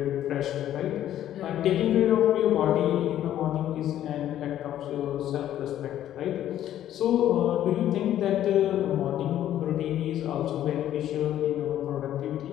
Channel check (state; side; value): quieter; right; 11.8 dB